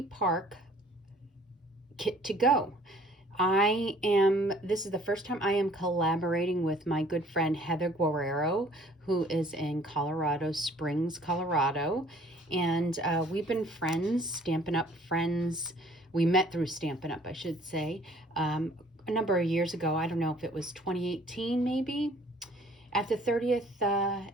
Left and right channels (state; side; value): normal; both; correlation 0.56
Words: Park kit to go. This is the first time I am collaborating with my good friend Heather Guerrero, who is in Colorado Springs, Colorado. And we've been friends, Stampin' Up! Friends. We met through Stampin' Up!, I should say, a number of years ago. I don't know if it was 2018 maybe, at the 30th